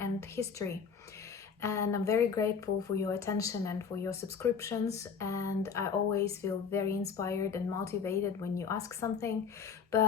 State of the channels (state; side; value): quieter; right; 6.3 dB